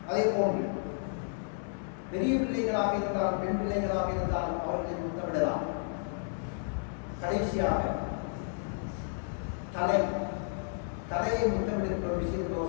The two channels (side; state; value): right; silent; digital silence